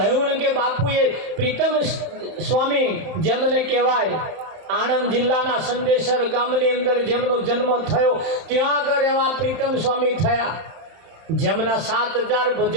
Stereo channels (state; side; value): late; left; 31 ms